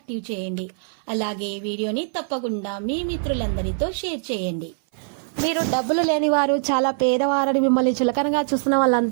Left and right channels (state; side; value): silent; left; 60 dB below the other